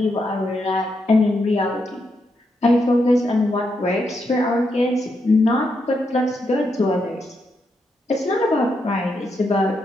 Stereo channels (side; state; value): both; normal; correlation 0.81